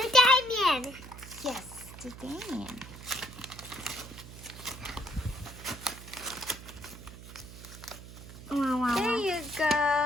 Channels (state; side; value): noise; right; hum, 15 dB below the sound